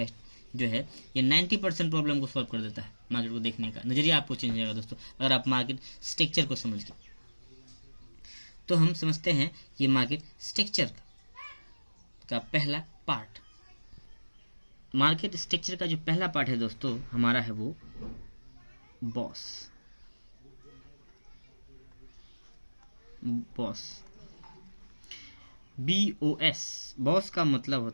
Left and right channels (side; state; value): both; inverted; correlation -1.00